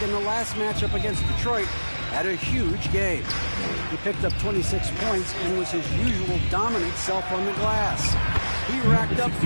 in the last matchup against Detroit had a huge game. He picked up 26 points and was his usual dominant self on the glass. He racked up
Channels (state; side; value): inverted; both; correlation -1.00